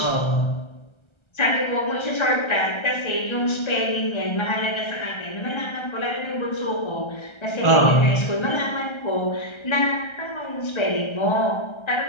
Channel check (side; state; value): right; late; 1.3 ms